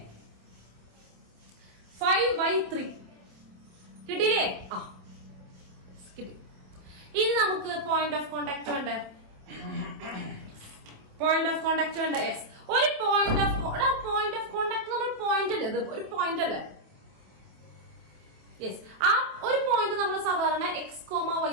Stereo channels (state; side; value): late; left; 27 ms